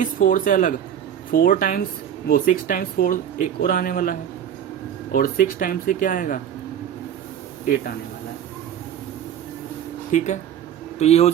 4 से अलग 4 टाइम्स वो 6 टाइम्स 4 एक और आने वाला है, और 6 टाइम्स से क्या आएगा 8 आने वाला है। ठीक है, तो ये हो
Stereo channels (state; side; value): quieter; left; 9.5 dB